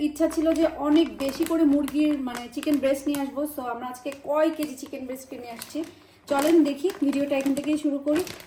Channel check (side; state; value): both; identical; correlation 1.00